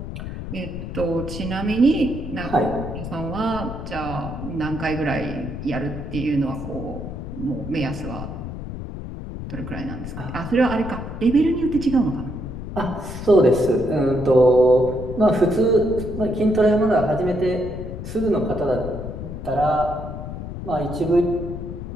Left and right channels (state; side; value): noise; left; rumble, 8 dB below the sound